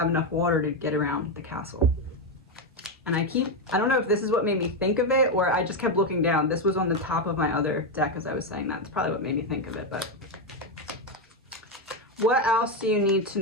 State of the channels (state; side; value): normal; both; correlation 0.07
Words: enough water to get around the castle. And I don't know if this is what made me think of it or I just kept looking down. This was on the top of my other deck as I was saying that. That's probably what made me think of it. But what else do you need to